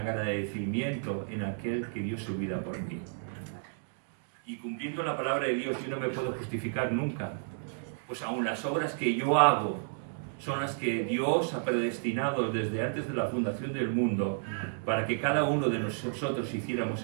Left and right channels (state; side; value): silent; left; digital silence